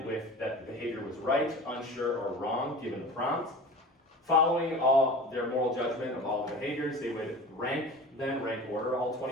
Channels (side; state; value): both; normal; correlation 0.37